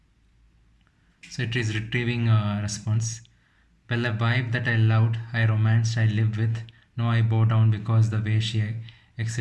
So it is retrieving a response. Well, a wife that I loved, I romanced, I lived with. No, I bow down because the way she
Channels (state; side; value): identical; both; correlation 1.00